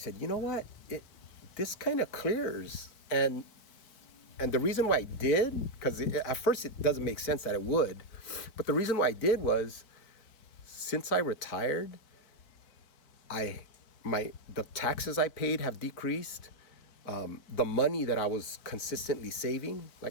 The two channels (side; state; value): right; late; 4.6 ms